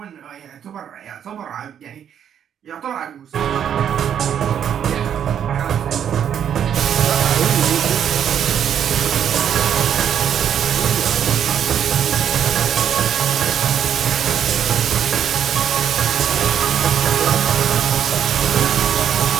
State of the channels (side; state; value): left; quieter; 9.0 dB